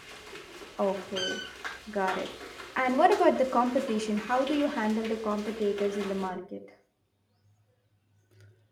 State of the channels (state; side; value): identical; both; correlation 1.00